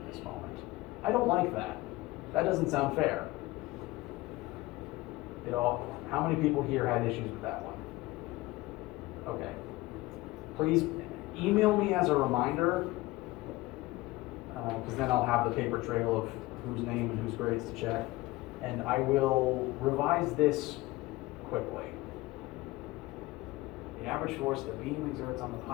this moment. I don't like that. That doesn't sound fair. How many people here had issues with that one? Okay. Please email me as a reminder, because then I'll have the paper trail of whose name and whose grades to check. And I will revise this quickly. The average force the beam exerts on the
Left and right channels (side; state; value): right; quieter; 19.8 dB